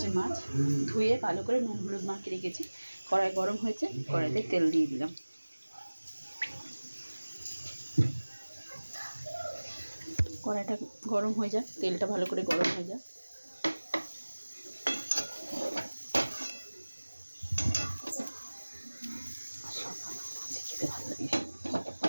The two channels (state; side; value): inverted; both; correlation -1.00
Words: মাছ, ধুয়ে ভালো করে নুন হলুদ মাখিয়ে রেখেছি। কড়াই গরম হয়েছে, কড়াইতে তেল দিয়ে দিলাম। কড়াইটা গরম হয়ে যায়, তেলটা ভালো করে গরম হয়ে যায়। খেতে ভালো লাগে।